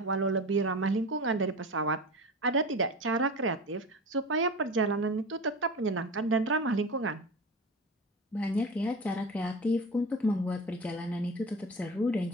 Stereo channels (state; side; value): normal; both; correlation 0.30